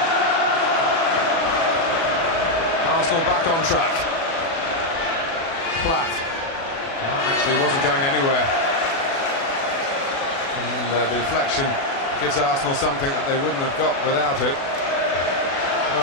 Arsenal back on track. Platt. That actually wasn't going anywhere. And the deflection gives Arsenal something that they wouldn't have got without it.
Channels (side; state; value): right; late; 36 ms